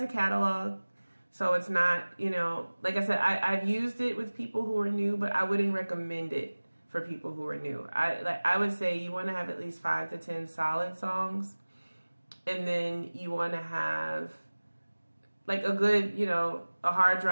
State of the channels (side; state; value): both; inverted; correlation -1.00